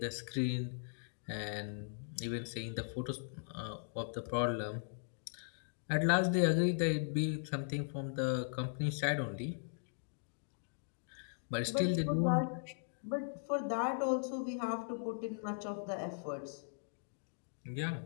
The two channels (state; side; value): silent; right; digital silence